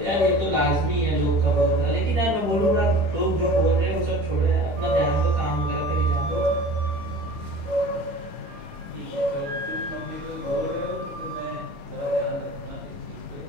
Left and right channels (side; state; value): left; late; 20 ms